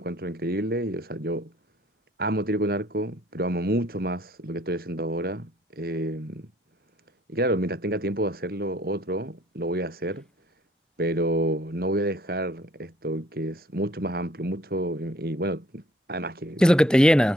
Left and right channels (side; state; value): both; normal; correlation 0.60